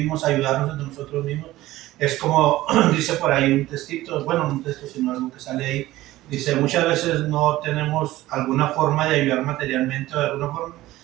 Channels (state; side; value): quieter; left; 16.5 dB